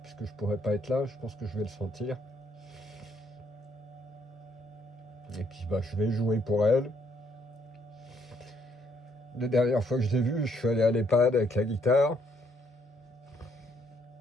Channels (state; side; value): normal; both; correlation 0.70